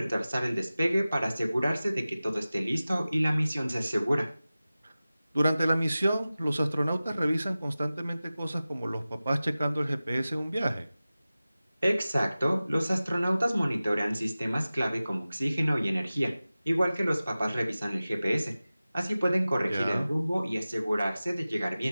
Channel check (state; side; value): inverted; both; correlation -0.96